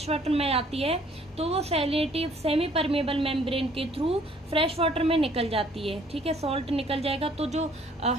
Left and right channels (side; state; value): both; normal; correlation 0.59